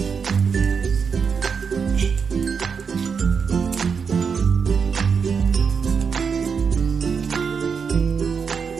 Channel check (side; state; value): left; quieter; 6.0 dB